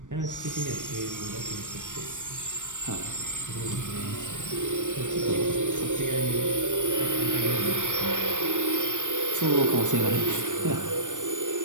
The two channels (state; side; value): late; left; 0.87 ms